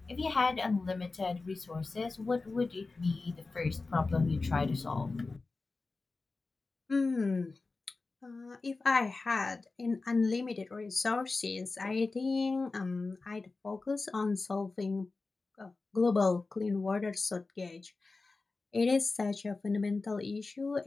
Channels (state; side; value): quieter; right; 3.7 dB